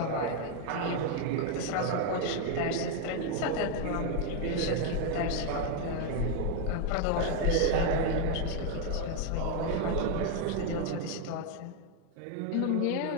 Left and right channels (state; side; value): different; both; correlation 0.01